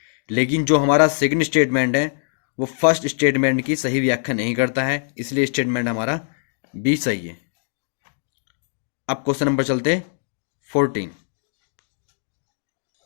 लेकिन जो हमारा सेकंड स्टेटमेंट है वो फर्स्ट स्टेटमेंट की सही व्याख्या नहीं करता है, इसलिए स्टेटमेंट हमारा बी सही है। अब क्वेश्चन नंबर चलते 14।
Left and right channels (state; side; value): silent; right; digital silence